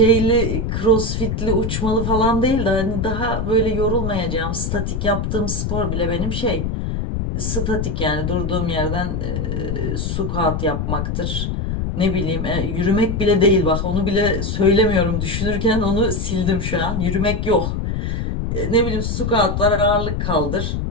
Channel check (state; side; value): noise; left; rumble, 2 dB below the sound